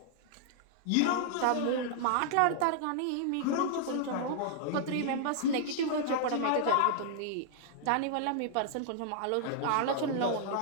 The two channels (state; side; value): different; both; correlation -0.01